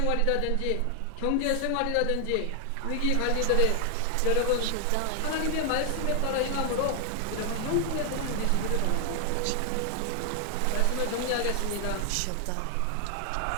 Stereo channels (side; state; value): both; different; correlation 0.00